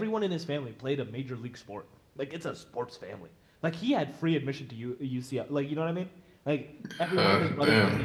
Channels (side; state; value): both; identical; correlation 1.00